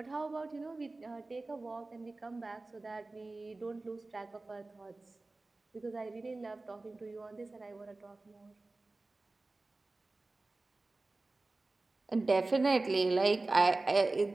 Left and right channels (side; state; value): left; quieter; 3.2 dB